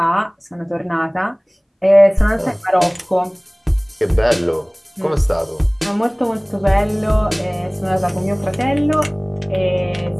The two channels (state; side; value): identical; both; correlation 1.00